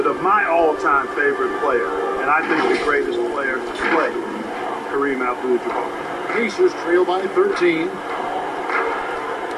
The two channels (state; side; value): identical; both; correlation 1.00